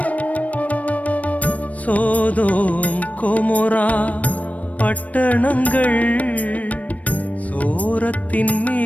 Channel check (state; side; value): late; right; 0.068 ms